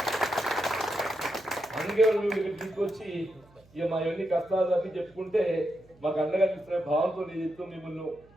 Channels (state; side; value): noise; right; hum, 28 dB below the sound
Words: అందుకే మీరు తీసుకొచ్చి ఇక మా ఎన్ని కష్టాలు అని చెప్పుకుంటే మాకు అండగా తీసుకునే భావంతో చెప్తూ మిమ్మల్ని